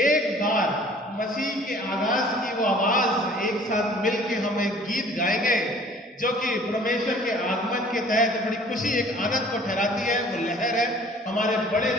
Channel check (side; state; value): both; normal; correlation 0.51